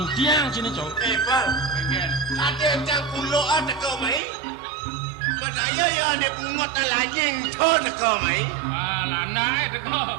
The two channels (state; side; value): drops out; left; at 4.2 s